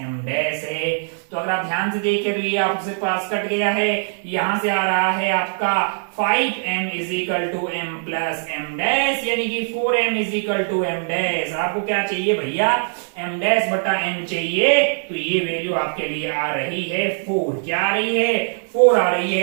डैश है। तो अगर आप ध्यान से देखें तो ये आपसे पास कट गया है, यहां से आ रहा है आपका 5m is equal to m plus m dash, यानी कि 4m is equal to m dash. आपको क्या चाहिए भैया, m डैश बटा m चाहिए, तो ये वैल्यू आपके लिए आ रही है 4। क्या आ रही है, 4 आ रही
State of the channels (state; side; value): silent; left; 65 dB below the other